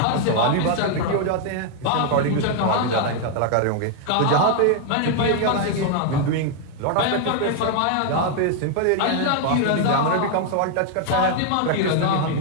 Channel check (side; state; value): both; different; correlation 0.00